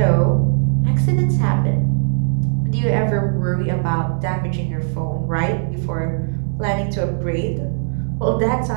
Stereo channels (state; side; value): silent; left; 66 dB below the other